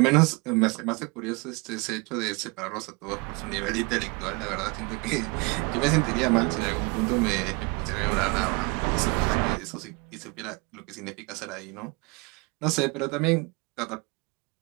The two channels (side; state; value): left; quieter; 28.4 dB